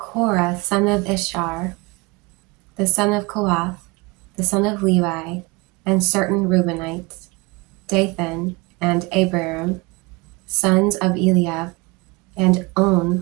son of Ishar, the son of Kohath, the son of Levi, and certain Reubenites, Dathan and Abiram, sons of Eliab, and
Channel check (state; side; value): quieter; left; 26.0 dB